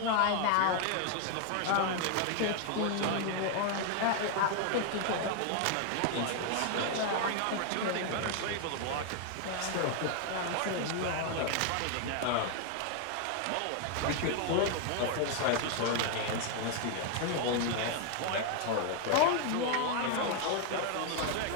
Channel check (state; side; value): different; both; correlation 0.00